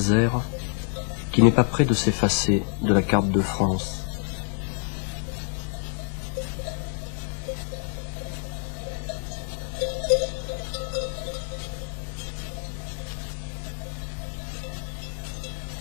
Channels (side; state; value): right; silent; 60 dB below the other